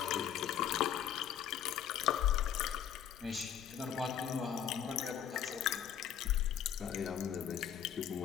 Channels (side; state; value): right; quieter; 9.5 dB